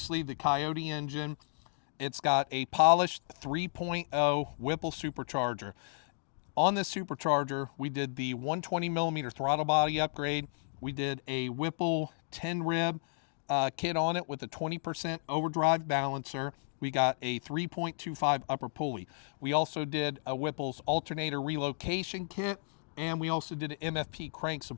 the Coyote engine. It's got a polished 3.0 Whipple supercharger. On this supercharger, we did the 120 millimeter throttle body upgrade. We did a Whipple 10 rib kit on it with a 20% overdrive balancer. We got a 3.25 upper pulley. We also did a Whipple's alternator relocation kit, and we also did an MFP crank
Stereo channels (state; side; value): silent; right; digital silence